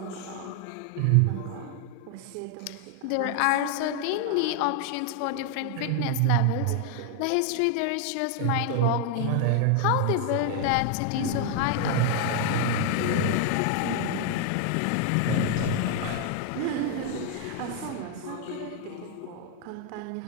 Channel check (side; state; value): both; different; correlation 0.00